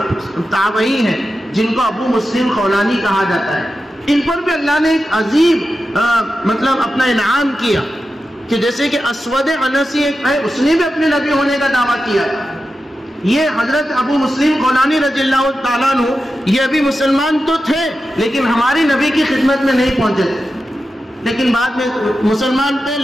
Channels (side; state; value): both; normal; correlation 0.91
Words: تابعی ہیں جن کو ابو مسلم خولانی کہا جاتا ہے. ان پر بھی اللہ نے ایک عظیم مطلب اپنا انعام کیا کہ جیسے کہ اسود انسی ایک ہے، اس نے بھی اپنے نبی ہونے کا دعویٰ کیا. یہ حضرت ابو مسلم خولانی رضی اللہ تعالیٰ عنہ یہ ابھی مسلمان تو تھے لیکن ہماری نبی کی خدمت میں نہیں پہنچے تھے، لیکن بعد میں مسلمان تھے